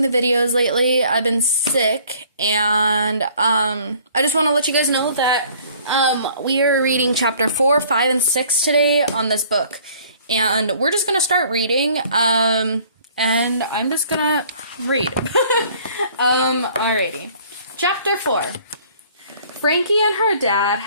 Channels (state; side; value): inverted; both; correlation -0.56